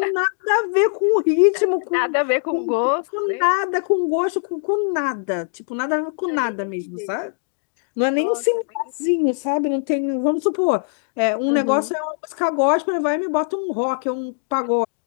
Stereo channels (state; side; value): silent; right; digital silence